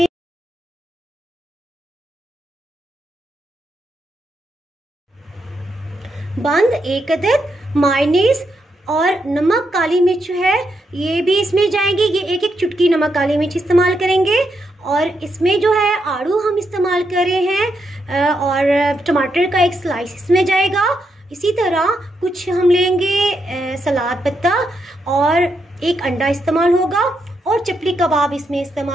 बंद 1 अदद, मायोनीज और नमक, काली मिर्च है ये भी इसमें जाएंगे। ये एक चुटकी नमक काली मिर्च इस्तेमाल करेंगे। और इसमें जो है आड़ू हम इस्तेमाल कर रहे हैं और टमाटर का एक स्लाइस इसमें जाएगा। इसी तरह कुछ हम लेंगे सलाद पत्ता और एक अंडा इस्तेमाल होगा और चपली कबाब इसमें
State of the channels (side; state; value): both; normal; correlation 0.81